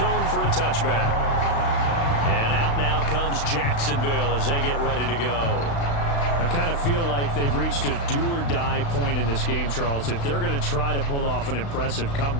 for a touchback. And out now comes Jacksonville as they get ready to go. I kind of feel like they've reached a do-or-die point in this game, Charles. If they're going to try to pull off an impressive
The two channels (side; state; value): right; late; 35 ms